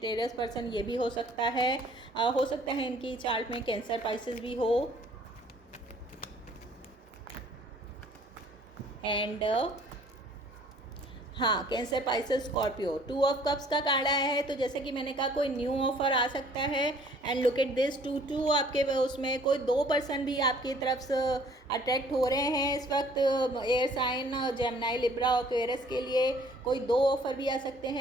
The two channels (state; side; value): normal; both; correlation 0.56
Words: पर्सन ये भी हो सकता है। हो सकता है इनकी चार्ट में कैंसर, पाइसेस भी हो। एंड हाँ, cancer, Pisces, Scorpio. 2 of cups का कार्ड आया है, तो जैसे कि मैंने कहा कोई न्यू ऑफ़र आ सकता है। एंड लुक एट दिस, 2 आपके उसमें कोई 2 पर्सन भी आपकी तरफ से अट्रैक्ट हो रहे हैं इस वक्त। एयर साइन, जेमिनी, लिब्रा और एक्वेरियस के लिए कोई 2 ऑफ़र भी आ सकते